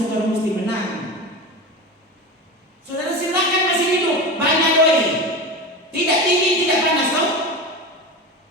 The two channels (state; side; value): normal; both; correlation 0.26